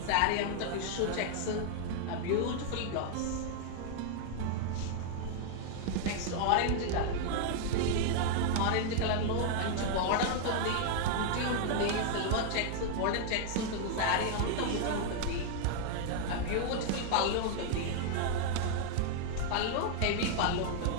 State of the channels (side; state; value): both; different; correlation 0.00